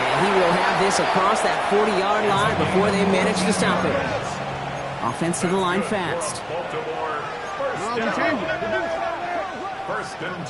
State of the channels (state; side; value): identical; both; correlation 1.00